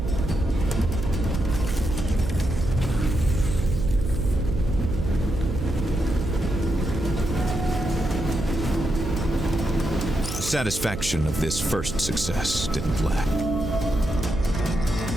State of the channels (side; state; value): right; noise; hum, 7 dB below the sound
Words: The satisfaction of this first success didn't lack.